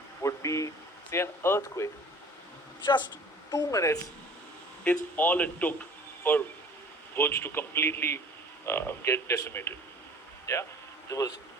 would be, say, an earthquake. Just 2 minutes is all it took for Bhuj to completely get decimated.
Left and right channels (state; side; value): normal; both; correlation 0.47